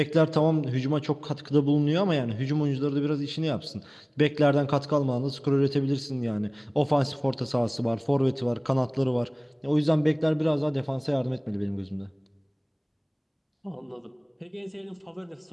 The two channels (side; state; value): both; identical; correlation 1.00